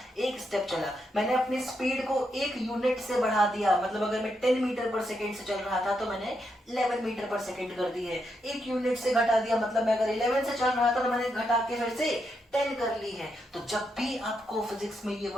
एक स्टेप चला। मैंने अपनी स्पीड को एक यूनिट से बढ़ा दिया, मतलब अगर मैं 10 मीटर पर सेकेंड से चल रहा था तो मैंने 11 मीटर पर सेकेंड कर दी है। एक यूनिट से घटा दिया, मतलब मैं अगर 11 से चल रहा था तो मैंने घटा के फिर से 10 कर ली है। तो जब भी आपको फिजिक्स में ये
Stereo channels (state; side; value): normal; both; correlation 0.81